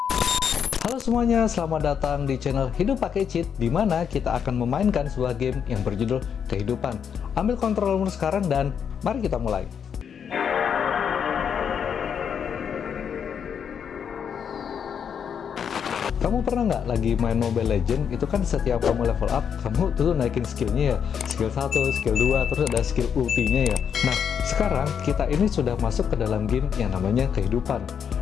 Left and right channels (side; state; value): right; quieter; 7.6 dB